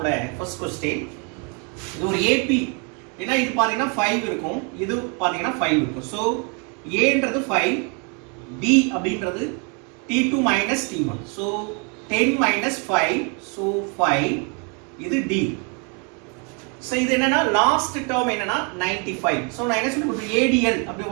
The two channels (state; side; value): quieter; left; 34.7 dB